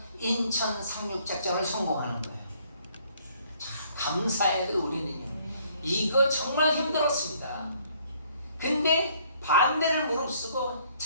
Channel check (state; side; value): inverted; both; correlation -0.63